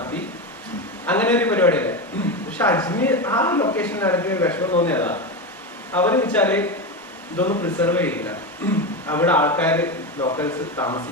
അങ്ങനെ ഒരു പരിപാടിയല്ലേ. പക്ഷെ അജ്മീർ ആ ലൊക്കേഷനിൽ എനിക്ക് വിഷമം തോന്നിയതാ, അവര് വെച്ചാല് ഇതൊന്നും പ്രിസർവ് ചെയ്യില്ല. അവിടെ ആൾക്കാർ ലോക്കൽസ്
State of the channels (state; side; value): normal; both; correlation 0.17